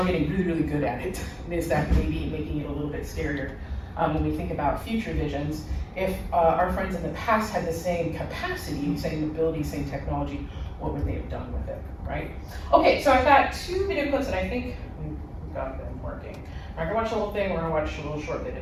getting really, really good at it. Is that maybe making it a little bit scarier when we think about future visions? If our friends in the past had the same capacity, same ability, same technology, what would they have done with it, right? Okay, so I've got 2 video clips that I think we've got them working. We're not going to watch the whole thing, we're going to watch a little short bit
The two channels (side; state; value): both; identical; correlation 1.00